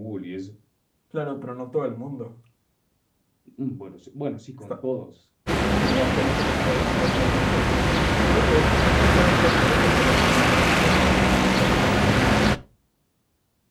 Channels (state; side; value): identical; both; correlation 1.00